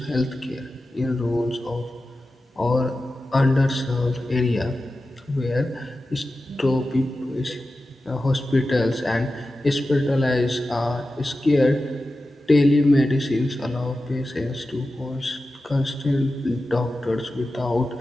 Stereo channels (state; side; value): normal; both; correlation 0.93